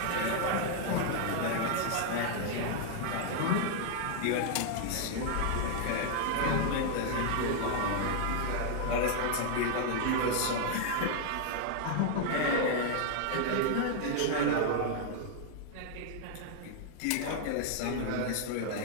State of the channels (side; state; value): both; different; correlation 0.00